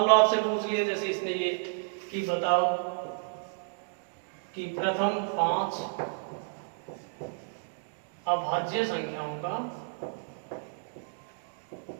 लो आपसे पूछ लिए जैसे इसने ये कि बताओ कि प्रथम 5 अभाज्य संख्याओं का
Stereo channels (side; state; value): left; silent; digital silence